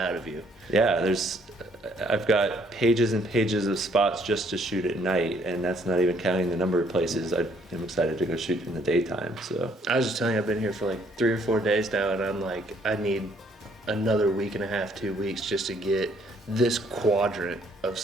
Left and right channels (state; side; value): normal; both; correlation 0.65